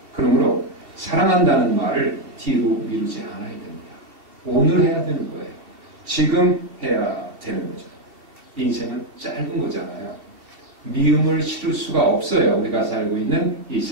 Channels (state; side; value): late; left; 2.7 ms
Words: 그러므로 사랑한다는 말을 뒤로 미루지 않아야 됩니다. 오늘 해야 되는 거예요. 지금 해야 되는 거죠. 인생은 짧은 거잖아요. 미움을 실을 수가 없어요. 우리가 살고 있는 이